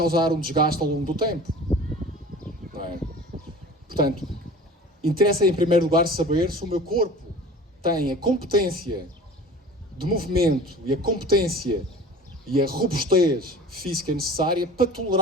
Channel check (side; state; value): both; normal; correlation 0.41